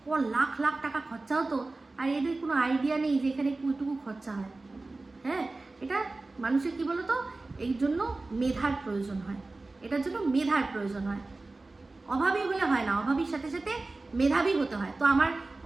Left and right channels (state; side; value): quieter; left; 3.3 dB